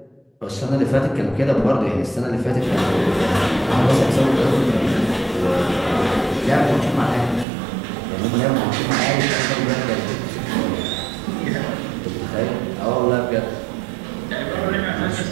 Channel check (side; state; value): left; drops out; at 7.5 s